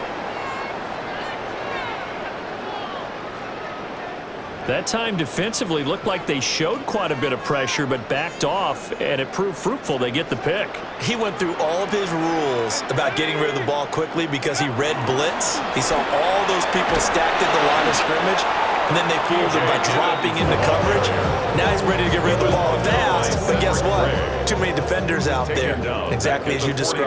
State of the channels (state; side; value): identical; both; correlation 1.00